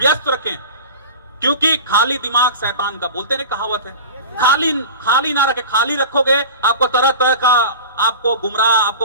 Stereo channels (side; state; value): both; inverted; correlation -0.35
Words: रखें, क्योंकि खाली दिमाग शैतान का, बोलते हैं कहावत है। खाली ना रखे। खाली रखोगे आपको तरह तरह का, आपको गुमराह, आपको